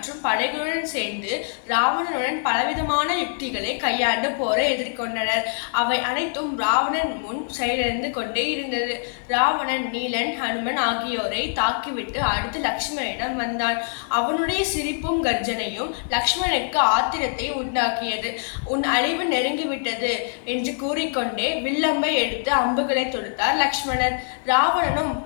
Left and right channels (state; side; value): silent; right; digital silence